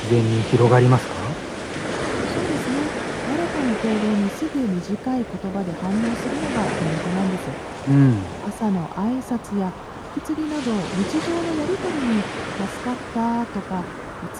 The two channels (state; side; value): identical; both; correlation 1.00